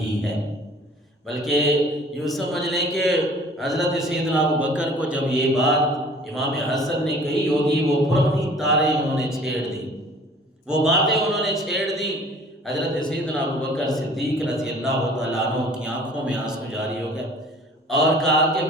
ہے۔ بلکہ یوں سمجھ لیں کہ حضرت سیدنا ابو بکر کو جب یہ بات امام حسن نے کہی ہوگی، وہ پرانی تاریں انہوں نے چھیڑ دی، وہ باتیں انہوں نے چھیڑ دی۔ حضرت سیدنا ابو بکر صدیق رضی اللہ تعالیٰ عنہ کی آنکھوں میں آنسو جاری ہو گئے اور کہا کہ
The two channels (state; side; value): normal; both; correlation 0.50